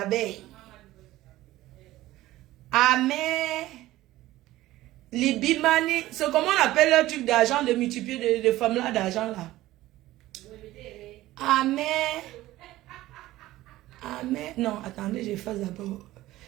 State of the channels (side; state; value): left; quieter; 16.3 dB